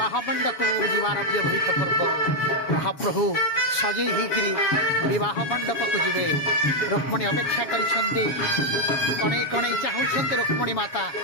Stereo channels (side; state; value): right; late; 7.2 ms